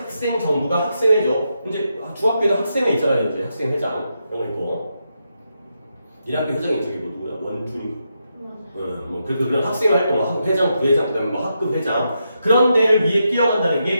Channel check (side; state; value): both; inverted; correlation -0.84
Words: 정부가 학생회죠. 이제 중학교에는 학생회 있잖아요. 이제 학생회장 이런 거 있고 1학교 회장이 저기 뭐 누구야? 원준이. 뭐 그런 학생 활동, 회장, 부회장, 그다음에 뭐 학급 회장 그런 데를 위해 뛰어간다는